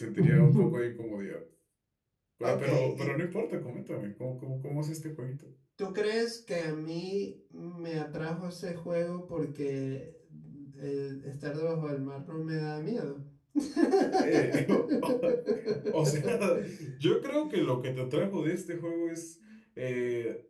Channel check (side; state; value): both; identical; correlation 1.00